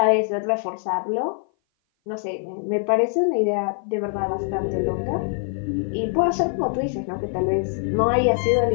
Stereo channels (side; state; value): right; silent; 57 dB below the other